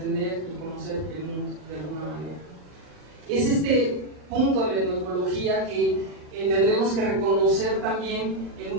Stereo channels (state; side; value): late; left; 39 ms